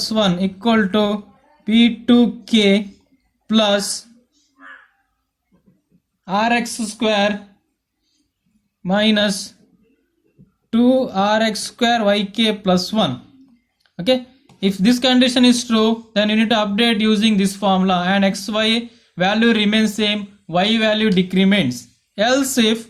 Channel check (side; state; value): both; identical; correlation 1.00